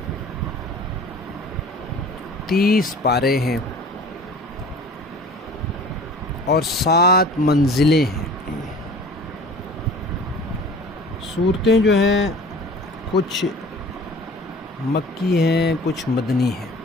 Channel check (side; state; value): both; normal; correlation 0.44